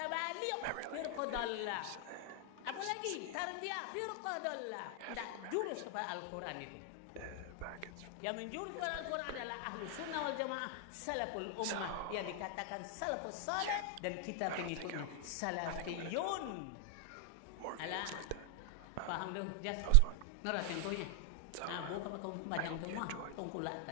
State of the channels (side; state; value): both; different; correlation 0.00